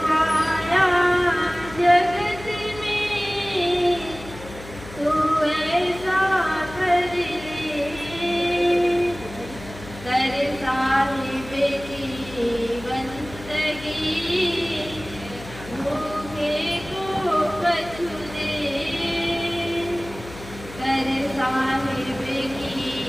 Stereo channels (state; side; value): noise; left; hum, 15 dB below the sound